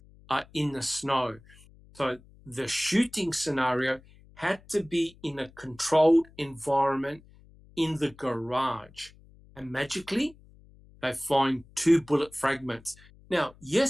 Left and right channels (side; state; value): left; noise; hum, 25 dB below the sound